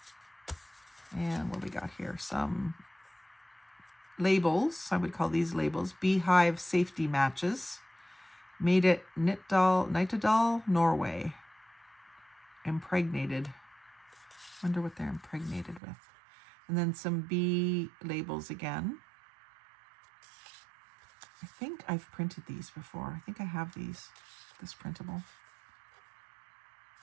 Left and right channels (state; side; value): drops out; left; at 15.8 s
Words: And what we got here? Some labels. I would call these labels. Beehive safety matches. Made at Nittedal, Norway. Impregnated. Wonder what they're impregnated with. And then some bee labels again. I think I've printed these before. I think I have this printable.